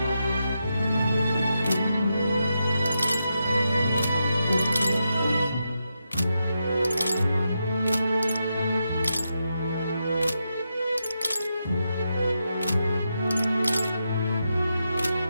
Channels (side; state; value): both; inverted; correlation -0.86